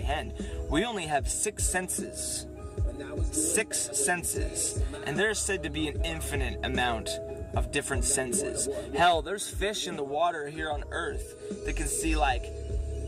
We only have 6 senses. 6 senses. And there's said to be an infinite amount of different senses. Hell, there's fish in the water here on Earth that can see like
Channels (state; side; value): identical; both; correlation 1.00